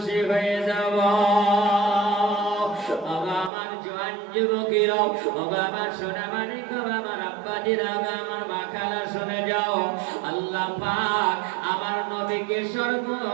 হয়ে যাব। আমার জোয়ান যুবকেরা, আমার সোনামানিক, আমার আব্বাজিরা, আমার মা খালা শুনে যাও, আল্লাহ পাক আমার নবীকে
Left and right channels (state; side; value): drops out; left; at 3.5 s